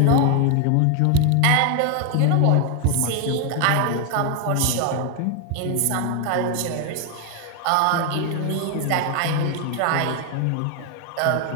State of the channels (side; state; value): both; different; correlation 0.01